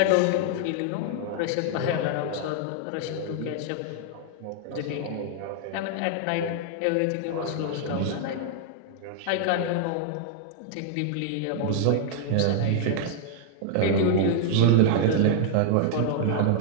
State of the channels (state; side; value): different; both; correlation 0.00